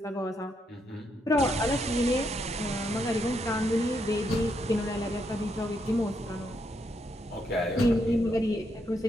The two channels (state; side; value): normal; both; correlation 0.78